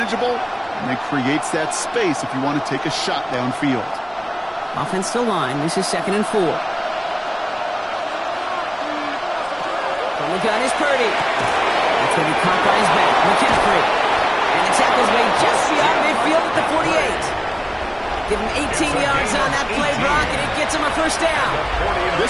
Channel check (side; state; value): both; identical; correlation 1.00